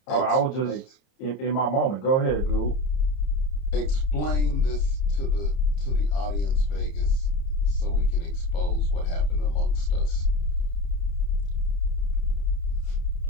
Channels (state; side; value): late; right; 30 ms